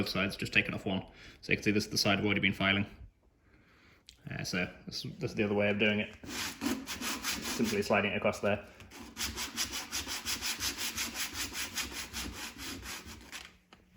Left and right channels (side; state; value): both; identical; correlation 1.00